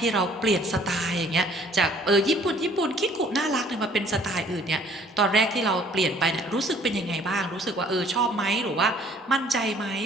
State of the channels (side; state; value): both; normal; correlation 0.57